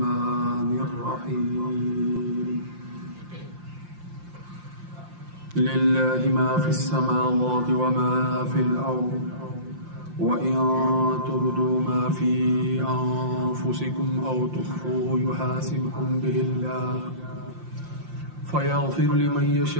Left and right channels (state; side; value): late; left; 5.7 ms